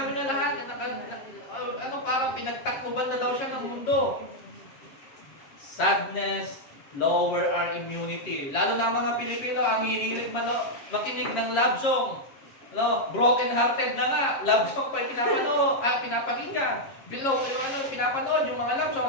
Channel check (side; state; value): right; late; 7.4 ms